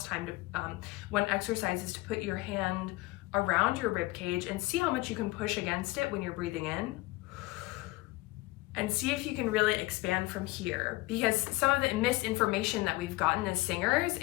time, one exercise is to put your hand around your rib cage and see how much you can push against it when you're breathing in. And see if you can really expand from here, because some of the misinformation that we've gotten as singers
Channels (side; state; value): right; quieter; 20.9 dB